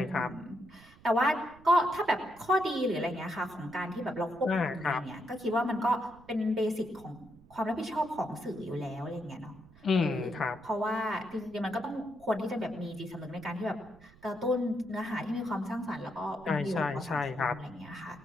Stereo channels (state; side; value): noise; right; rumble, 24 dB below the sound